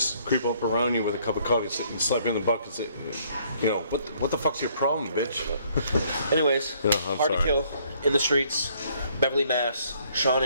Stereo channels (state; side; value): inverted; both; correlation -0.64